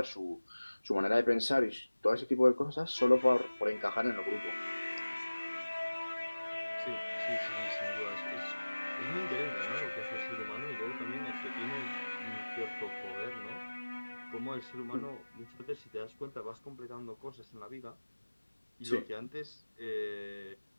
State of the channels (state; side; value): inverted; both; correlation -1.00